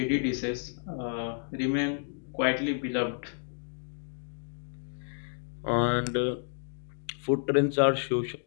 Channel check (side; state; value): right; silent; digital silence